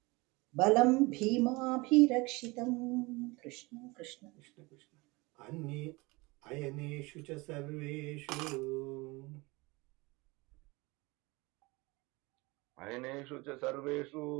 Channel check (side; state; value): left; quieter; 24.4 dB